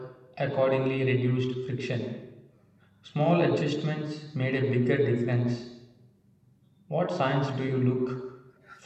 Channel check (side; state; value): both; identical; correlation 1.00